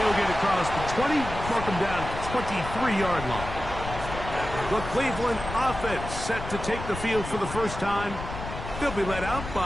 get across the 20, mark him down at the 23-yard line. The Cleveland offense set to take the field for the first time. They'll be led out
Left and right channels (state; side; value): noise; left; rumble, 8 dB below the sound